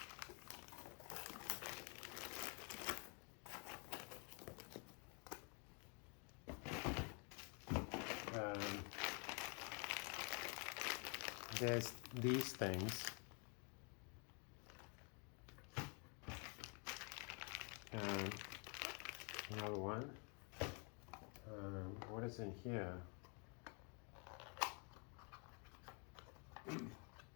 There's these things. Another one. What is in here?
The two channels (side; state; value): right; quieter; 36.1 dB